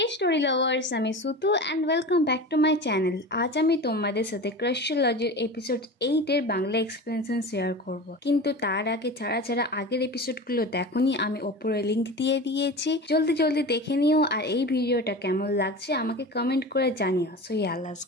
story lovers, আমি Sutu and welcome back to my channel. আজ আমি তোমাদের সাথে ক্রাশোলজির এপিসোড 8 এর বাংলা এক্সপ্লেনেশন শেয়ার করব। কিন্তু তার আগে যারা আগের এপিসোডগুলো দেখোনি, আমি ওপরে লিংক দিয়ে দিয়েছি, জলদি দেখে নিও। আর এই ভিডিওটা কেমন লাগছে আমাকে কমেন্ট করে জানিও। So let's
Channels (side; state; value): both; normal; correlation 0.31